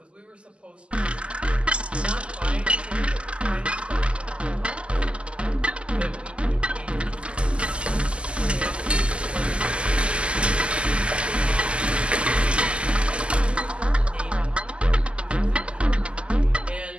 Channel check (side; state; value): left; late; 0.053 ms